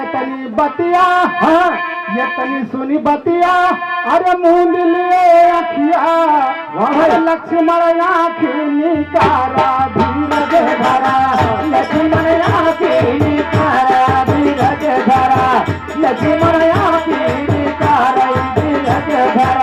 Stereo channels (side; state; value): both; identical; correlation 1.00